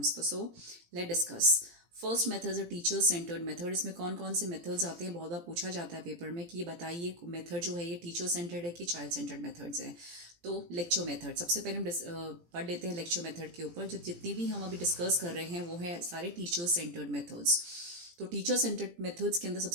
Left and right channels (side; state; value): left; late; 17 ms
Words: So let's discuss. First method है टीचर सेंटर्ड मेथड. इसमें कौन कौन से मेथड्स आते हैं बहुत बार पूछा जाता है पेपर में कि ये बताइए मेथड जो है ये टीचर सेंटर्ड है कि चाइल्ड सेंटर्ड मेथड्स हैं. तो लेक्चर मेथड सबसे पहले हम पढ़ लेते हैं लेक्चर मेथड के ऊपर. जो जितनी भी हम अभी डिस्कस कर रहे हैं वो है सारे टीचर सेंटर्ड मेथड्स. तो टीचर सेंटर्ड मेथड्स के अंदर